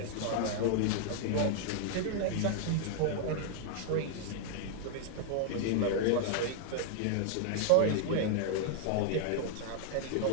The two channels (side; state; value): both; different; correlation 0.00